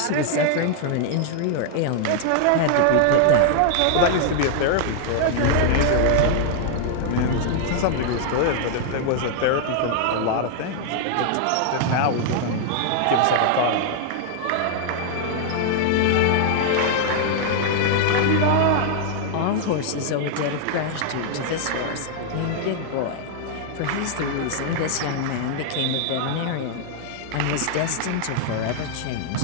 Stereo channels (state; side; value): different; both; correlation -0.01